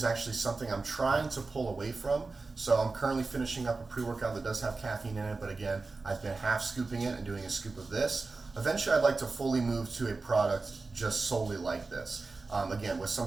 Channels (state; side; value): quieter; left; 3.8 dB